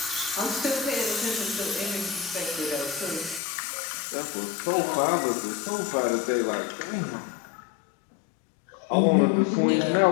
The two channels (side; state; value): right; drops out; at 3.4 s